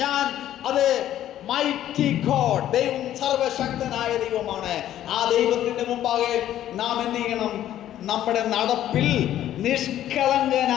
ഞാൻ അത് മൈറ്റി ഗോഡ്, ദൈവം സർവശക്തനായ ദൈവമാണ്. ആ ദൈവത്തിന്റെ മുമ്പാകെ നാം എന്ത് ചെയ്യണം? നമ്മുടെ നടപ്പിൽ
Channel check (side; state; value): right; quieter; 12.1 dB